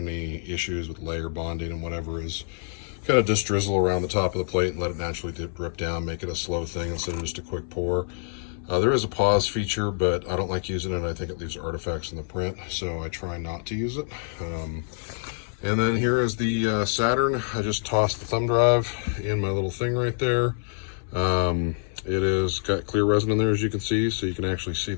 issues with layer bonding and whatever is kind of just drizzle around the top of the plate and let it naturally drip down, make it a slow thing instead of just a quick pour. There is a pause feature, but I don't like using it. I think it leaves artifacts in the print, so I try not to use it. And then here is the Saturn. I just tossed the thumb drive in my little thing right there. It is got clear resin in there, as you can see, so you can actually see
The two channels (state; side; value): silent; right; 61 dB below the other